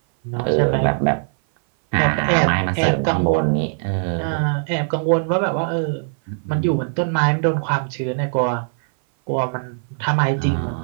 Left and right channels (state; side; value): silent; left; 58 dB below the other